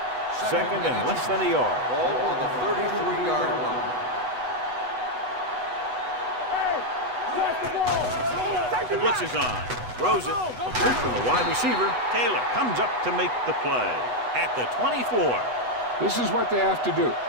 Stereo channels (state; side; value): late; left; 8.1 ms